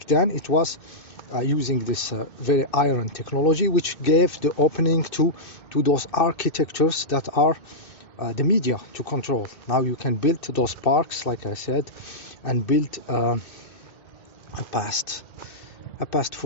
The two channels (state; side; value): late; right; 2.6 ms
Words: then it was using this very iron technology, which gave the opening to those architectures that are the media to control. Now you can build those parks, like I said, and build a past